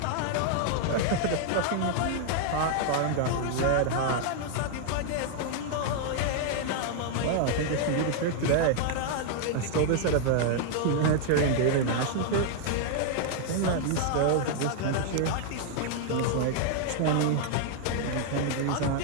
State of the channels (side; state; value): both; different; correlation 0.00